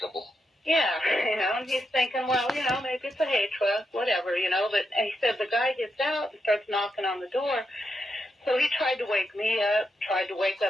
Yeah, and he's thinking, well, maybe it's a hay truck, whatever, but and he said the guy gets out and starts knocking on the door. So he tried to wake me up, tried to wake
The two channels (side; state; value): both; normal; correlation 0.84